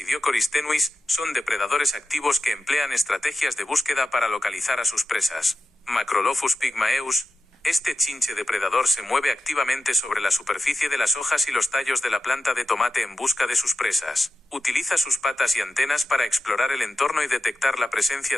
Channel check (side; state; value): both; normal; correlation 0.89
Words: tenuis son depredadores activos que emplean estrategias de búsqueda para localizar a sus presas. Macrolophus pygmaeus. Este chinche depredador se mueve activamente sobre la superficie de las hojas y los tallos de la planta de tomate en busca de sus presas. Utiliza sus patas y antenas para explorar el entorno y detectar la presencia